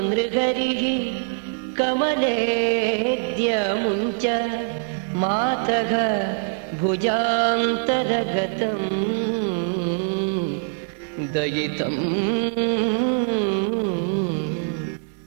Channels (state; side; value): silent; left; digital silence